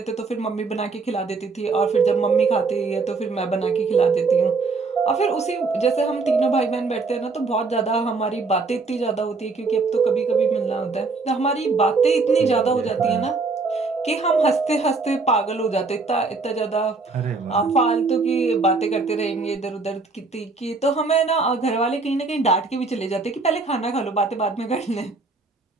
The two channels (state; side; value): quieter; left; 4.0 dB